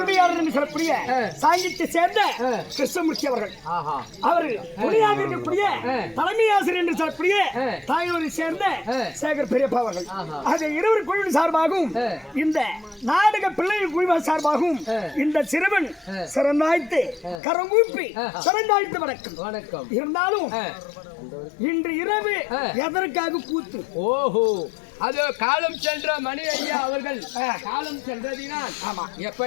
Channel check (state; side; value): drops out; right; at 17.4 s